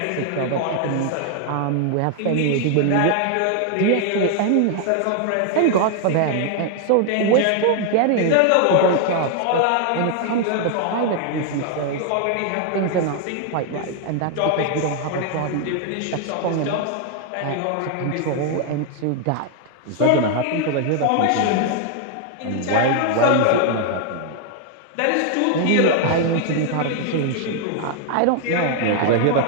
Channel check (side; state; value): both; different; correlation 0.00